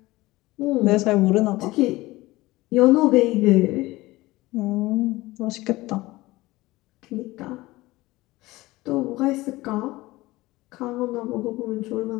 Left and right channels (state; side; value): quieter; right; 19.4 dB